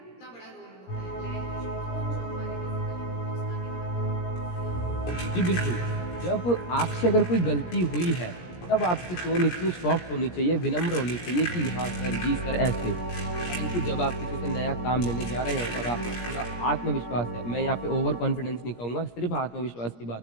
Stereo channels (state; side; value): late; right; 17 ms